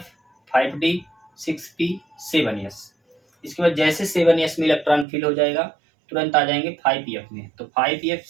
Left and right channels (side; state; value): left; drops out; at 5.1 s